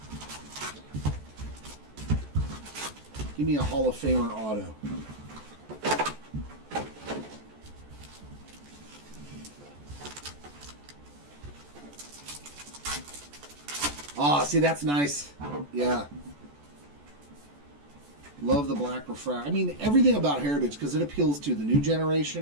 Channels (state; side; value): late; left; 14 ms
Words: Give me a Hall of Famer auto. Ah, see, that's nice. Yeah. Love the black refract. I mean, everything about Heritage, because it appeals to the new